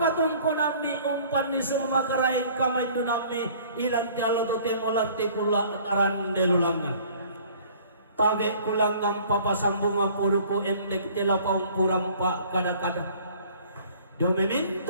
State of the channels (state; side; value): inverted; both; correlation -0.52